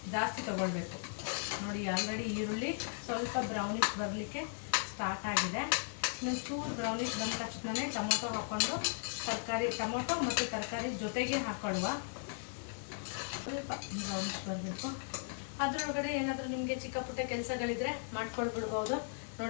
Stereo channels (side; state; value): right; silent; digital silence